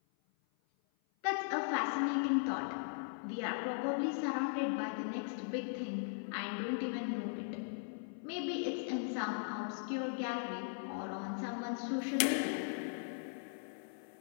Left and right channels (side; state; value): right; silent; 52 dB below the other